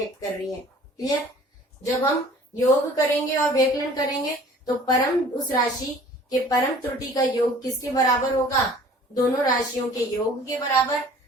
कर रही है। क्लियर। जब हम योग करेंगे और व्यकलन करेंगे तो परम उस राशि के परम त्रुटि का योग किसके बराबर होगा, दोनों राशियों के योग के बराबर।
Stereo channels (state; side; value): normal; both; correlation 0.50